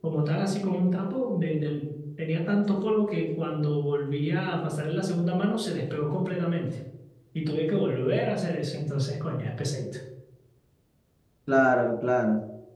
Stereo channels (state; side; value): identical; both; correlation 1.00